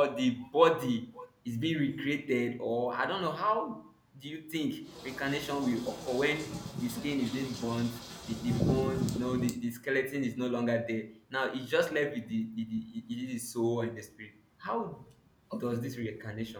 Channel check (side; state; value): both; identical; correlation 1.00